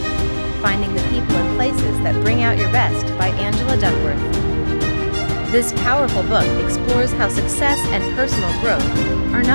Finding the People and Places That Bring Out Your Best by Angela Duckworth. This powerful book explores how success and personal growth are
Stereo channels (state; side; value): inverted; both; correlation -1.00